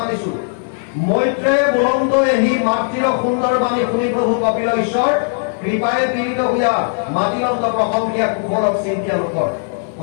মৈত্ৰে বুলন্দ এহি মাতৃৰ সুন্দৰ বাণী শুনি প্ৰভু কপিল ঈশ্বৰ কৃপায়ে পীড়িত হোৱা মাতিলন্ত প্ৰশংসিয়া কুশলক চিন্তিয়া লোকৰ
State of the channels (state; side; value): silent; right; 59 dB below the other